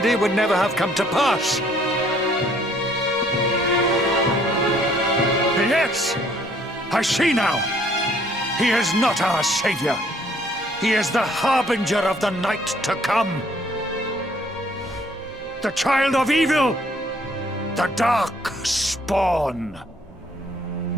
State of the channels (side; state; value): left; noise; hum, 28 dB below the sound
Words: would never have come to pass. Yes! I see now. He is not our savior. He is the harbinger of the night to come. The child of evil. The dark spawn.